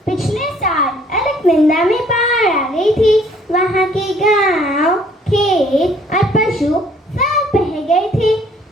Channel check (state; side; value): normal; both; correlation 0.60